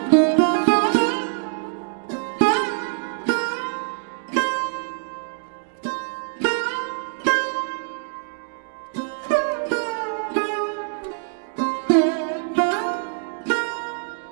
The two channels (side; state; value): left; silent; digital silence